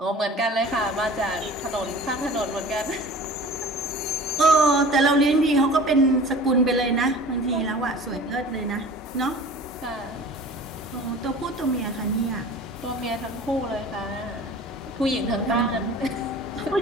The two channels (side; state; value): both; normal; correlation 0.42